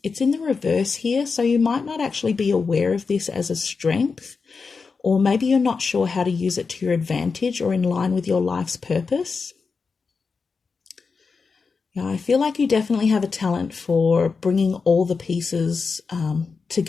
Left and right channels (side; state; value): right; quieter; 4.9 dB